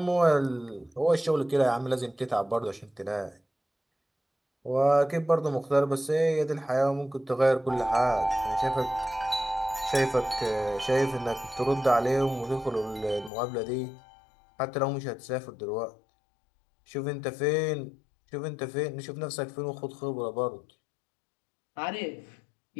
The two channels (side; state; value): right; drops out; at 13.3 s